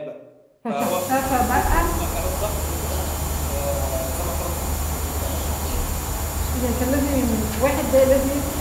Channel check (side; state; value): both; identical; correlation 1.00